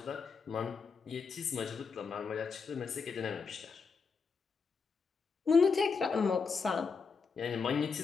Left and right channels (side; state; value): right; quieter; 5.2 dB